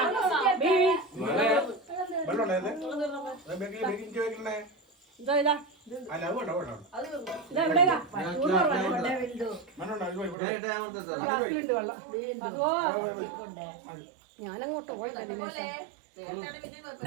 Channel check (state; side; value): drops out; left; at 10.4 s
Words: ബീ. വെള്ളമുണ്ടോ ഇത്? ബേക്കിംഗ് വെക്കണേ. ഇതാ ഇതാ. അല്ല അത് വേണ്ട വേണ്ട. അത് തിന്നു. ഇതാ എവിടെയാ? വെള്ളമുണ്ടോ ഞാൻ ഇട്ടേ അമർത്തട്ടെ. വെള്ളം. അതോ ഞാനങ്ങോട്ട് പോയത് പോലെ നേരത്തെ പിന്നെ